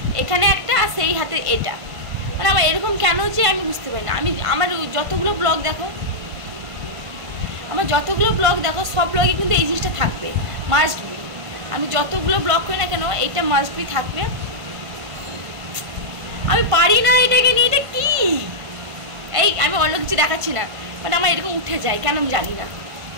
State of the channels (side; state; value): left; late; 1.5 ms